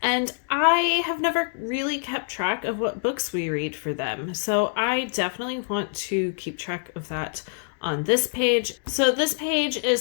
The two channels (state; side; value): silent; right; digital silence